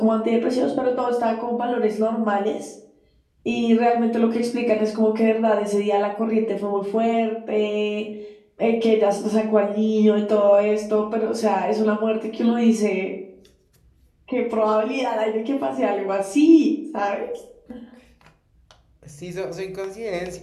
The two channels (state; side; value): identical; both; correlation 1.00